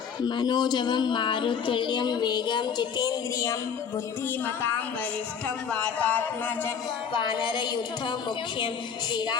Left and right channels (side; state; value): right; quieter; 7.0 dB